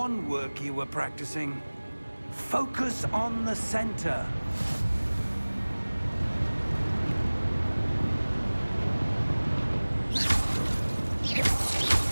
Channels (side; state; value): both; inverted; correlation -1.00